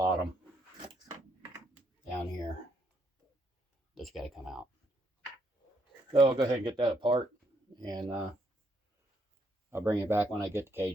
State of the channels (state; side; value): normal; both; correlation 0.73